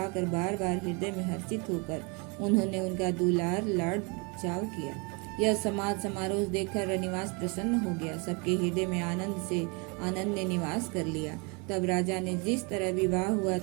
बार बार हृदय में हर्षित होकर उन्होंने उनका दुलार लाड चाव किया। यह समाज समारोह देखकर रनिवास प्रसन्न हो गया। सबके हृदय में आनंद ने निवास कर लिया। तब राजा ने जिस तरह विवाह हुआ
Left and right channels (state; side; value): quieter; left; 31.7 dB